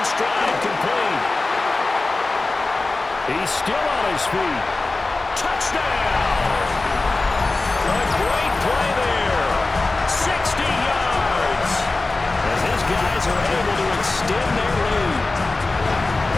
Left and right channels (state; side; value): quieter; right; 3.3 dB